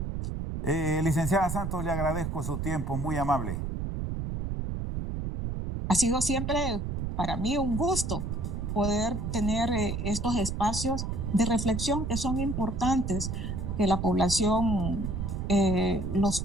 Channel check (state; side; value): noise; right; rumble, 3 dB below the sound